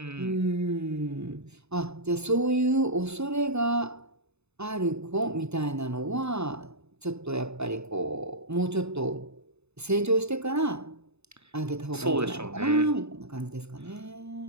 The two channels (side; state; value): left; late; 0.80 ms